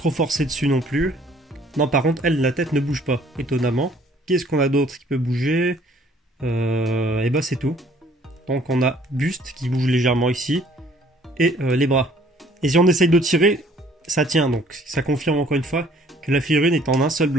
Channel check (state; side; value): normal; both; correlation 0.58